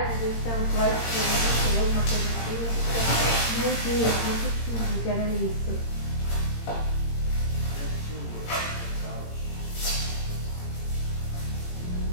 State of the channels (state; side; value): late; right; 18 ms